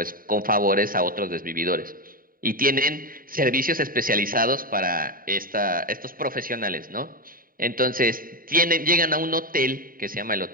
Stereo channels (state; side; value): late; left; 0.41 ms